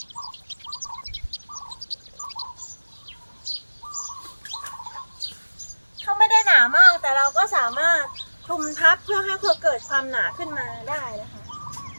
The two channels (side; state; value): both; inverted; correlation -1.00